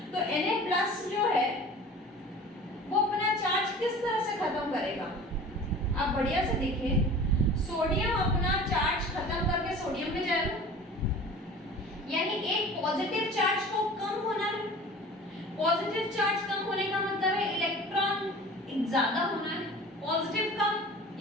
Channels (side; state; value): both; normal; correlation 0.41